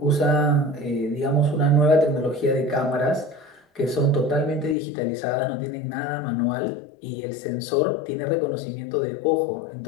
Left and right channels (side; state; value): right; drops out; at 4.8 s